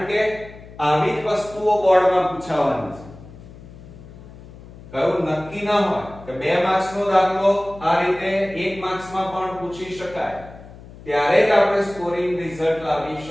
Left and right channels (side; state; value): left; noise; hum, 18 dB below the sound